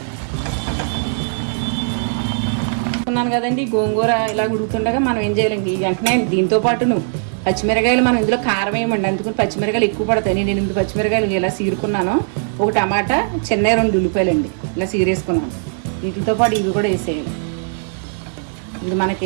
అనుకున్నాను కదండి, గోంగూర ఇలా ఉడుకుతుండగా మనం ఏం చేయాలండి, వెంటనే దీంతో పాటును పచ్చిమిరకాయలు మనం ఇందులో కారం వేయమండి, అందుకని పచ్చిమిరకాయలు ఎక్కువ పడతాయి. నేను 8 పచ్చిమిరకాయలు ఇలా సీరుకున్నాను, ఒక టమాటా, చిన్న 2 ఉల్లిపాయలండి ఇలా సీరేసుకున్నాను. వీటితో పాటు ఇవి కూడా వేసేయాలి. ఇది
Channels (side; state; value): left; silent; digital silence